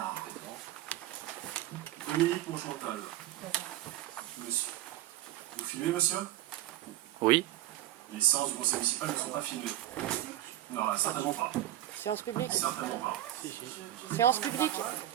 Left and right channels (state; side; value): quieter; left; 13.9 dB